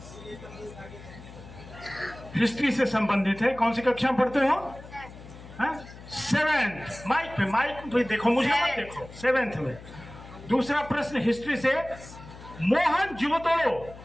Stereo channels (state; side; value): noise; left; hum, 17 dB below the sound